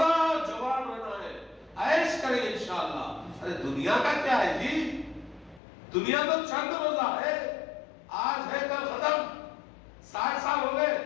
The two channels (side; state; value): right; drops out; at 5.6 s